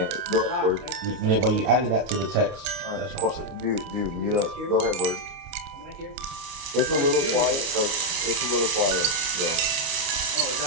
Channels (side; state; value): left; late; 29 ms